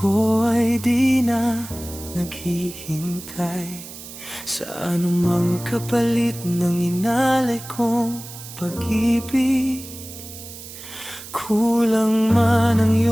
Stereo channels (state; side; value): noise; right; hiss, 14 dB below the sound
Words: ay di na naghihintay sa anumang kapalit ng inalay kong pag-ibig. Kulang man ang